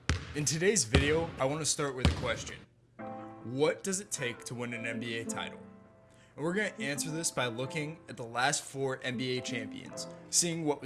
In today's video, I want to start with a question. What does it take to win an NBA title? And we're going to answer this by looking at the last 4 NBA champions, seeing what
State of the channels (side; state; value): both; identical; correlation 1.00